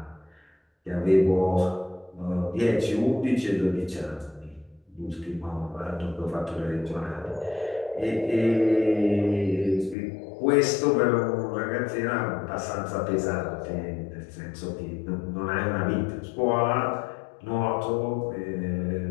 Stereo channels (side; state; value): right; drops out; at 10.0 s